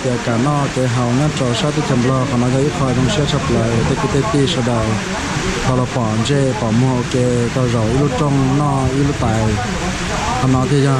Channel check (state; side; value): identical; both; correlation 1.00